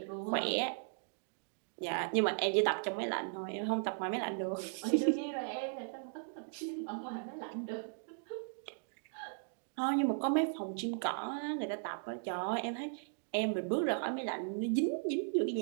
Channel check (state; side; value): silent; left; digital silence